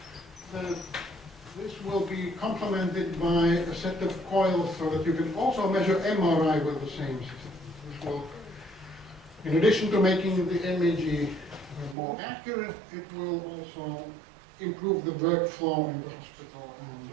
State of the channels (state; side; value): drops out; left; at 12.0 s